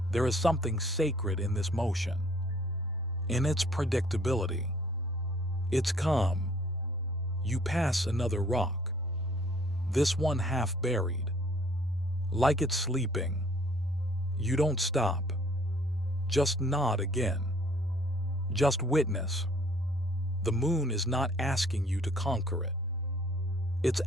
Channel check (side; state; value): both; normal; correlation 0.59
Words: There is something sacred in this motion, in its predictability. It's calm. You pass another rock, this one half buried, like it's sleeping. You don't stop. Just nod again. Just witness. The moon is not asking you to conquer it. It's